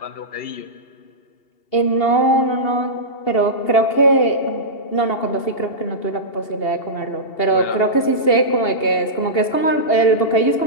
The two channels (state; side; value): late; right; 2.7 ms